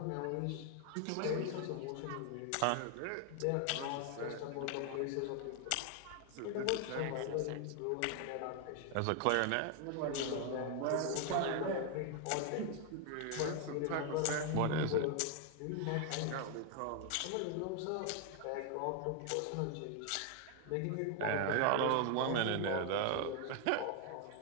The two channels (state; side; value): different; both; correlation 0.00